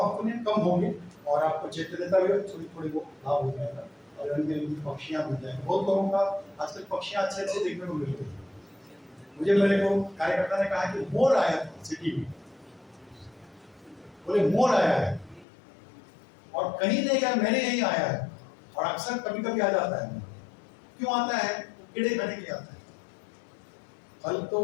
होने कम होंगे, और आपको चैतन्यता भी थोड़ी थोड़ी वो लाभ हो जाएगा, और रंग बिरंगी पक्षियां मिल जाएंगी। बहुत लोगों का आजकल पक्षियां अच्छे अच्छे देखने को मिल रही है। मुझे मेरे को कार्यकर्ता ने कहा कि मोर आया था सिटी में, बोले मोर आया है, और कहीं नहीं गया, मैंने यही आया है, और अक्सर कभी कभी आ जाता है। क्यों आता है? कीड़े खाने के लिए आता है। फल तो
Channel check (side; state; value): right; drops out; at 15.5 s